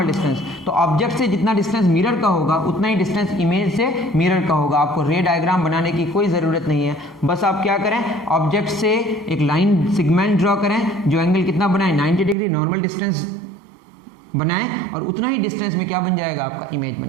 डिस्टेंस। तो ऑब्जेक्ट से जितना डिस्टेंस मिरर का होगा उतना ही डिस्टेंस इमेज से मिरर का होगा। आपको रे डायग्राम बनाने की कोई ज़रूरत नहीं है, बस आप क्या करें, ऑब्जेक्ट से एक लाइन सेगमेंट ड्रॉ करें जो एंगल कितना बनाए 90 डिग्री, नॉर्मल डिस्टेंस बनाएं और उतना ही डिस्टेंस में क्या बन जाएगा, आपका इमेज बन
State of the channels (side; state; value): left; drops out; at 12.4 s